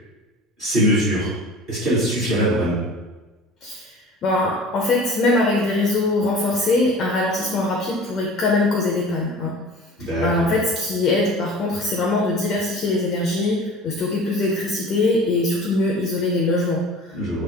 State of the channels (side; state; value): both; normal; correlation 0.41